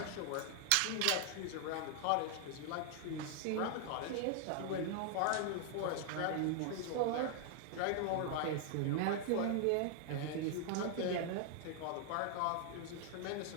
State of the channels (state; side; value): different; both; correlation 0.00